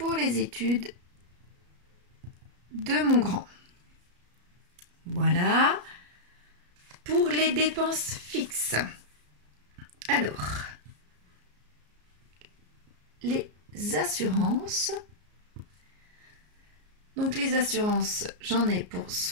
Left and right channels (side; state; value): left; late; 34 ms